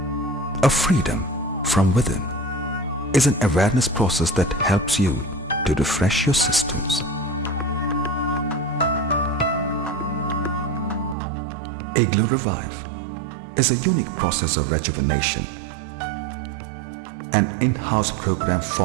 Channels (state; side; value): drops out; left; at 11.2 s